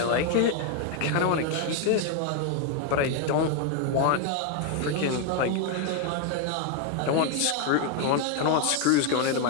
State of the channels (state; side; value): different; both; correlation 0.01